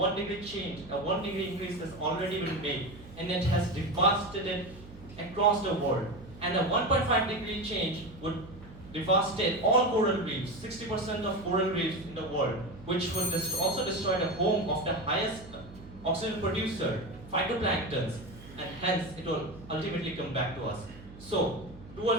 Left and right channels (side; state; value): right; noise; hum, 18 dB below the sound